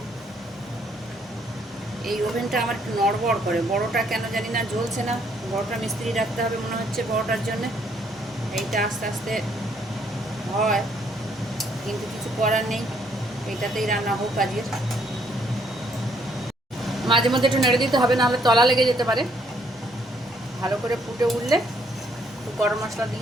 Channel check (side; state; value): both; normal; correlation 0.68